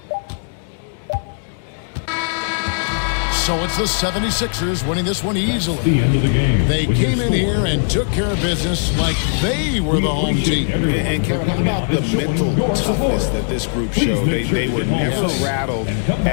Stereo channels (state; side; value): silent; right; digital silence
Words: So it's the 76ers winning this one easily. The end of the game. They came in here and took care of business like they were the home team. And Kevin, how about the mental toughness that this group showed? They were never rattled